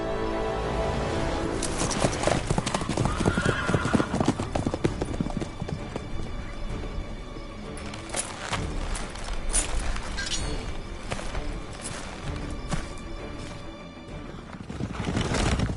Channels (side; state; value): both; identical; correlation 1.00